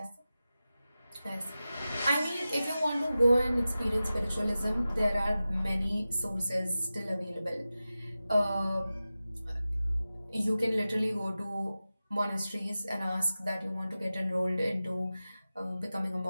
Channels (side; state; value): both; inverted; correlation -0.94